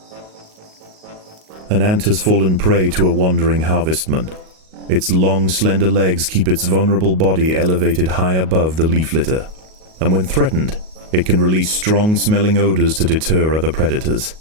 An ant has fallen prey to a wandering harvestman. Its long, slender legs keep its vulnerable body elevated high above the leaf litter, and when threatened, it can release strong-smelling odors to deter other predators.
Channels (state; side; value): late; left; 38 ms